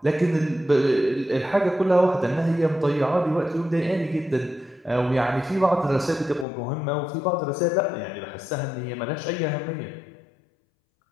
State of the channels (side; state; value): right; drops out; at 6.5 s